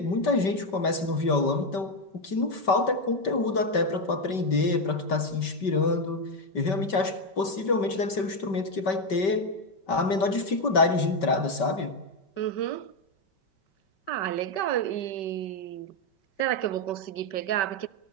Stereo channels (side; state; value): right; late; 5.2 ms